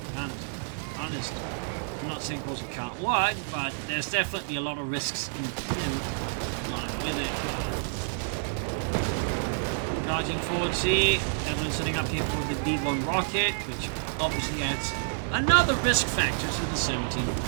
guns. Honest. I'm not saying it can't work, but there's definitely a lot of risks in line with it. Charging forward here, Evelynn setting up here for the D1 rocket, which obviously adds another risk factor to the 17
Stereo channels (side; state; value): left; silent; digital silence